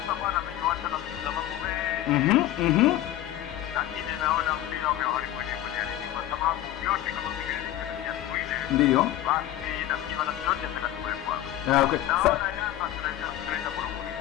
bwana ametuacha na sababu wewe. Lakini naona mpira umeharibu ligi kwa sababu yote kama vile ya Sweden. Ndio. Basi nafikiri na yote yatakatuwekwa. Okay. Naona Yanga tunaenda kurudi.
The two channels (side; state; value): right; quieter; 13.5 dB